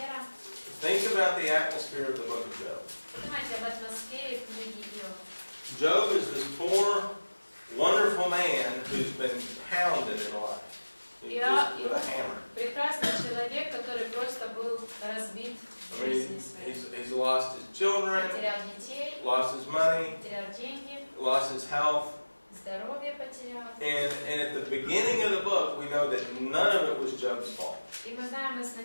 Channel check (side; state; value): both; inverted; correlation -1.00